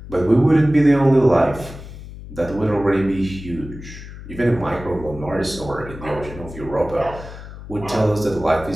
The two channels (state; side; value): noise; left; hum, 14 dB below the sound